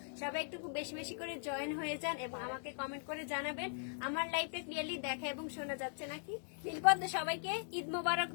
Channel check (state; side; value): silent; right; digital silence